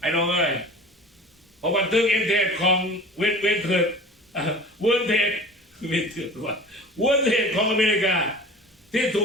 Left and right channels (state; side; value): normal; both; correlation 0.41